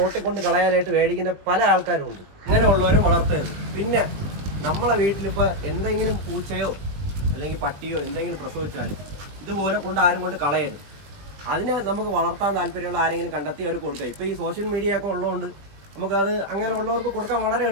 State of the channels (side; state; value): left; late; 20 ms